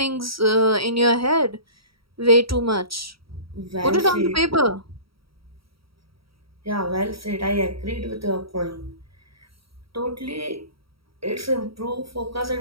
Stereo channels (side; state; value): left; late; 0.75 ms